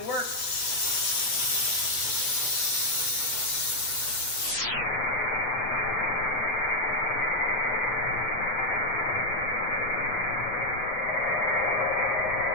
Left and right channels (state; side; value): late; right; 7.9 ms